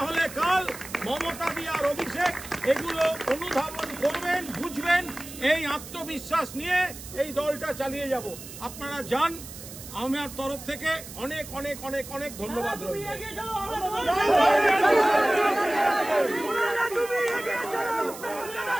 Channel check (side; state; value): right; noise; hiss, 14 dB below the sound